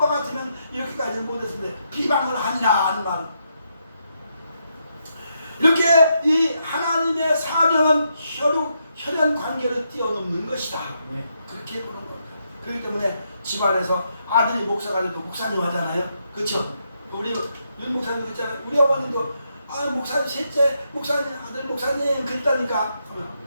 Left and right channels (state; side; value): inverted; both; correlation -0.80